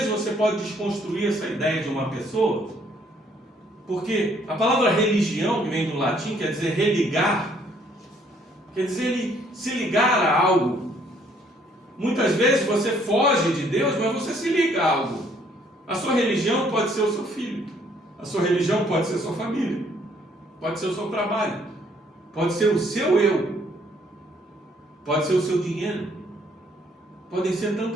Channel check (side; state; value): both; normal; correlation 0.65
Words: você pode desconstruir essa ideia de uma pessoa, porque a palavra religião, que vem do latim, quer dizer religar, quer dizer ele se ligar a algo. Muitas vezes você foge de Deus, mas você se liga a algo. A sua religião pode ser o seu filho, a sua religião pode ser a sua família, pode ser o seu trabalho, pode ser o seu eu, pode ser o seu dinheiro, podem ser